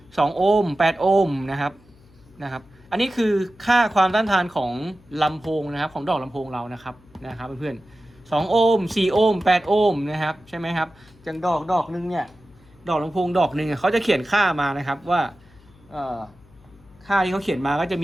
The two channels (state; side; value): noise; left; hum, 27 dB below the sound